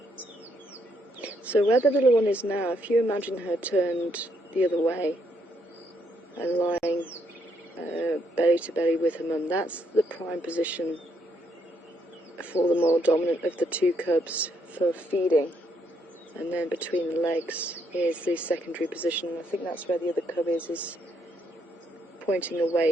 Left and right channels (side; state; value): both; normal; correlation 0.74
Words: So where the little one is now, if you imagine her turned the other way and lying belly to belly with her mum, that's the prime position for the more dominant of the two cubs for feeding. And then between the legs is the secondary position. I think that's where the other cub is pointing